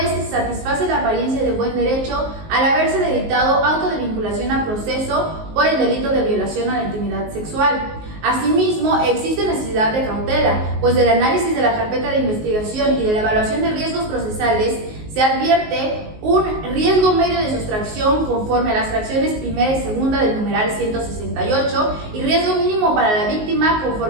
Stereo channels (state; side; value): late; left; 19 ms